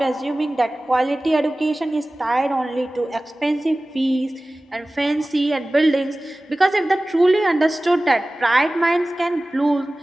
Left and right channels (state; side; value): normal; both; correlation 0.97